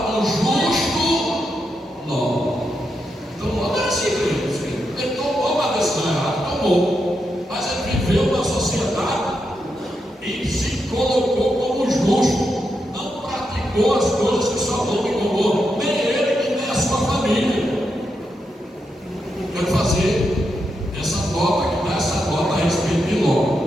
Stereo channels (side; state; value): both; normal; correlation 0.84